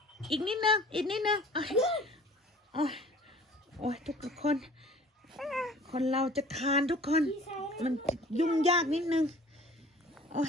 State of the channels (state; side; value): normal; both; correlation 0.48